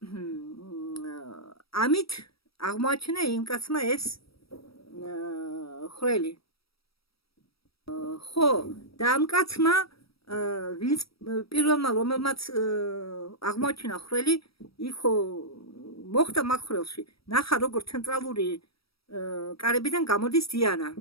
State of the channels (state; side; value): late; right; 0.76 ms